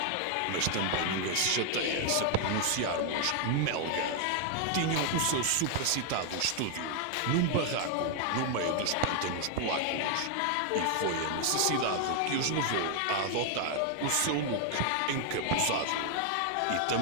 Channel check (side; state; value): both; different; correlation 0.00